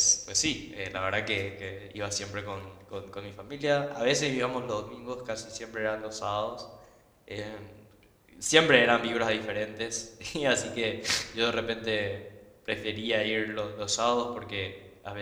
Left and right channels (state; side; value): identical; both; correlation 1.00